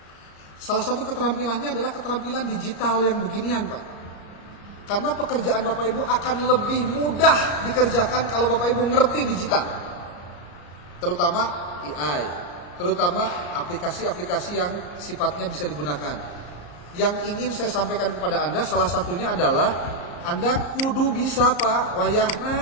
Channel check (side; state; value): right; late; 34 ms